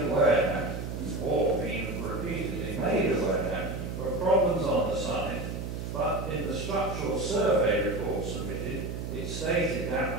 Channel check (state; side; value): noise; right; hum, 6 dB below the sound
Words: aware, or been repeatedly made aware, of problems on the site, but in the structural survey report submitted, it stated